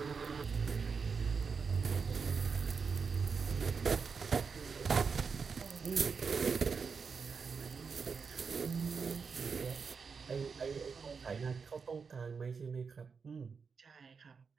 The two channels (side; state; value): left; quieter; 5.5 dB